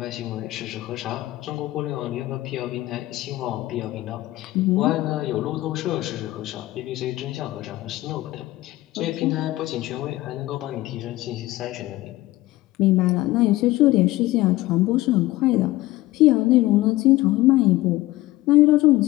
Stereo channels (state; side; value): quieter; right; 17.6 dB